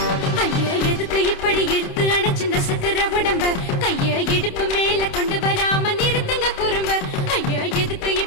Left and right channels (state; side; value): late; right; 28 ms